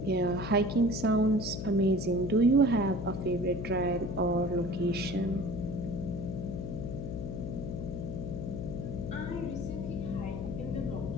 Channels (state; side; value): noise; left; hum, 5 dB below the sound